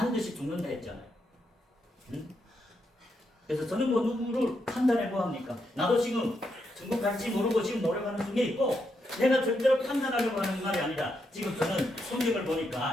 죽는다 했잖아요. 응? 그래서 저는 뭐 누구를 판단해 뭐합니까? 나도 지금 천국 갈지 모르고 지금 노력하는 중에 있고 내가 절대로 판단하려고 하는 말이 아니라 지금 저는 성경을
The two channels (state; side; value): normal; both; correlation 0.81